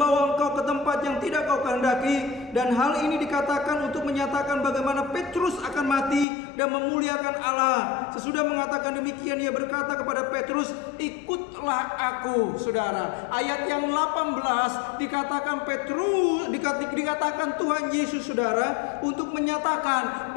engkau ke tempat yang tidak kau kehendaki." Dan hal ini dikatakan untuk menyatakan bagaimana Petrus akan mati dan memuliakan Allah. Sesudah mengatakan demikian, ia berkata kepada Petrus, "Ikutlah aku." Saudara, ayat yang 18 dikatakan dikatakan Tuhan Yesus, saudara, untuk menyatakan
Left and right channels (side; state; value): right; drops out; at 6.2 s